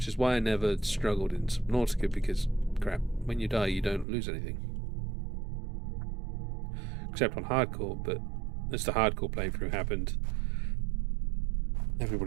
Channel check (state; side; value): drops out; left; at 4.0 s